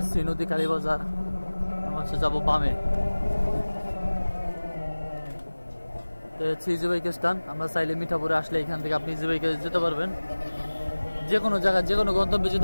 সি নদী, কালীবাজার। আমরা হচ্ছে যাবো বামে। ইজি বাইকের স্ট্যান্ড, আমরা চাইলে মিঠাপুরে আসলে এখান থেকে আপনি ইজি বাইকে যেতে পারবেন, যে কোনো জায়গায় যে কোনো গন্তব্যে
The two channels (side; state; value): both; inverted; correlation -1.00